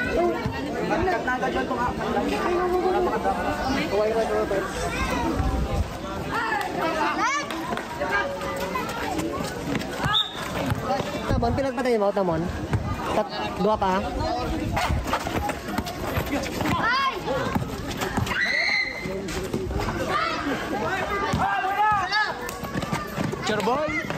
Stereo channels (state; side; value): identical; both; correlation 1.00